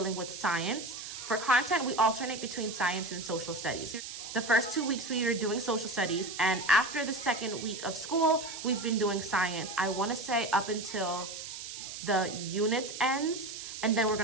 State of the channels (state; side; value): noise; right; hiss, 9 dB below the sound